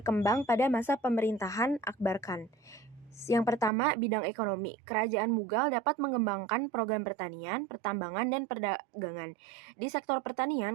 pada masa pemerintahan Akbar Khan. Yang pertama, bidang ekonomi. Kerajaan Mughal dapat mengembangkan program pertanian, pertambangan, dan perdagangan. Di sektor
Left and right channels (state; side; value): drops out; left; at 3.7 s